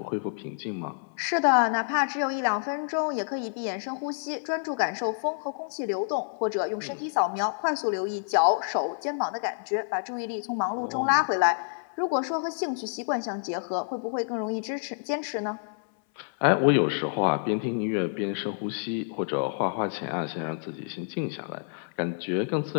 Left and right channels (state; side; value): silent; right; 59 dB below the other